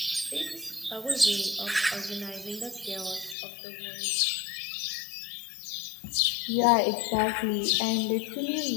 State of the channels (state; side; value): drops out; right; at 3.4 s